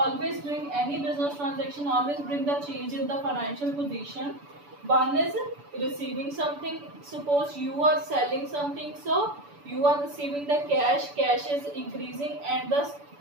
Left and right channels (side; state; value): left; late; 6.9 ms